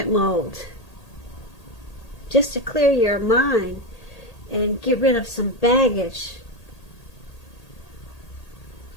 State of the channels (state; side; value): late; right; 1.8 ms